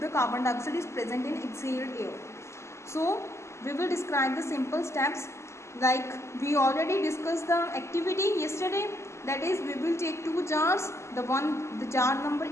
carbon dioxide is present in exhaled air. So we will describe the simple steps, like we already discussed the activity yesterday. That is, we will take two jars, the jar number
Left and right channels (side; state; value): right; late; 0.13 ms